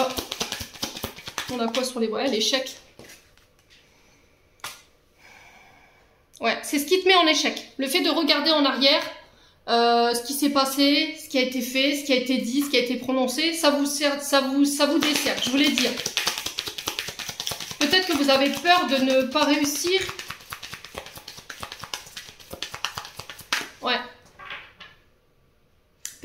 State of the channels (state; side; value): identical; both; correlation 1.00